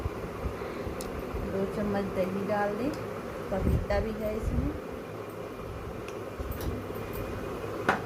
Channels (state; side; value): identical; both; correlation 1.00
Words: 2 चम्मच दही डाल दें, पपीता भी है इसमें।